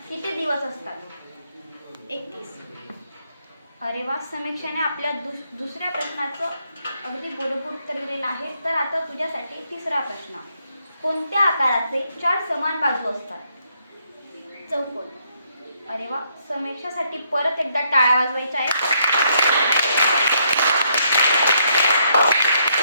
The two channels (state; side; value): inverted; both; correlation -0.73